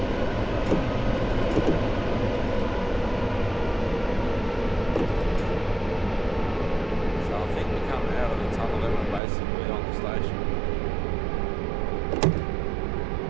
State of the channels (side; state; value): left; drops out; at 9.2 s